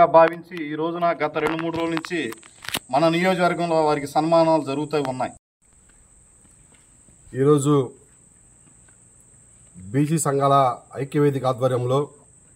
భావించి ఈ రోజున గత 2-3 రోజుల నుంచి మన నియోజకవర్గంలో వారికి సన్మానాలు జరుగుతూ ఉన్నాయి. ఈరోజు బీసీ సంఘాల ఐక్యవేదిక ఆధ్వర్యంలో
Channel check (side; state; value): both; identical; correlation 1.00